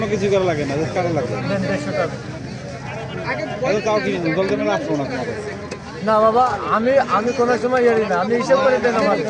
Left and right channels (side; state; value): both; identical; correlation 1.00